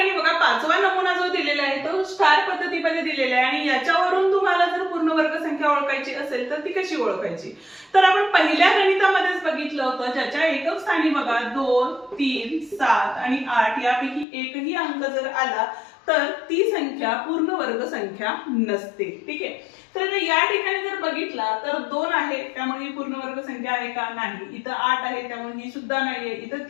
बघा पाचवा नमुना जो दिलेला आहे तो स्टार पद्धतीमध्ये दिलेला आहे आणि याच्यावरून तुम्हाला जर पूर्ण वर्ग संख्या ओळखायची असेल तर ती कशी ओळखायची, तर आपण पहिल्या गणितामध्येच बघितलं होतं, ज्याच्या एकक स्थानी बघा 2, 3, 7 आणि 8 यापैकी एकही अंक जर आला तर ती संख्या पूर्ण वर्ग संख्या नसते. ठीक आहे, तर या ठिकाणी जर बघितला तर 2 आहे त्यामुळे ही पूर्ण वर्ग संख्या आहे का, नाही. इथं 8 आहे त्यामुळे ही सुद्धा नाहीये. इथं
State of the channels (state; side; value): drops out; right; at 14.2 s